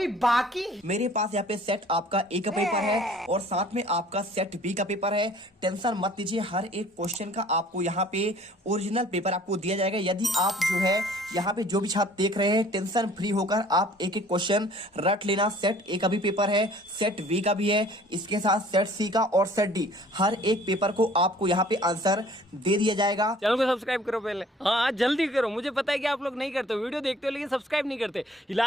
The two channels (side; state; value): both; normal; correlation 0.53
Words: बाकी। मेरे पास यहाँ पे सेट आपका ए का पेपर है और साथ में आपका सेट बी का पेपर है। टेंशन मत लीजिए, हर एक क्वेश्चन का आपको यहाँ पे ओरिजिनल पेपर आपको दिया जाएगा। यदि आप जो है यहाँ पे जो भी छात्र देख रहे हैं, टेंशन फ्री होकर आप एक एक क्वेश्चन रट लेना। सेट ए का भी पेपर है, सेट बी का भी है, इसके साथ सेट सी का और सेट डी, हर एक पेपर को आपको यहाँ पे आंसर दे दिया जाएगा। चैनल को सब्सक्राइब करो पहले, हाँ जल्दी करो। मुझे पता है कि आप लोग नहीं करते, वीडियो देखते हो लेकिन सब्सक्राइब नहीं करते। ये